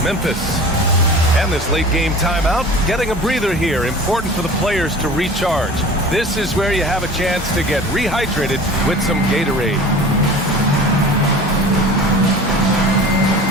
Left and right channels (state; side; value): normal; both; correlation 0.40